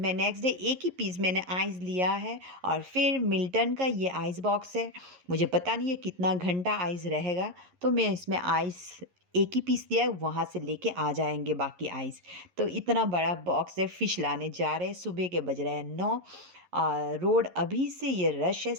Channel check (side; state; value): left; late; 11 ms